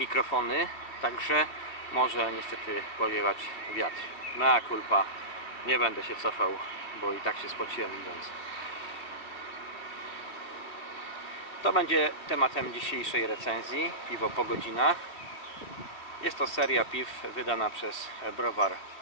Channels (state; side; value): late; right; 2.5 ms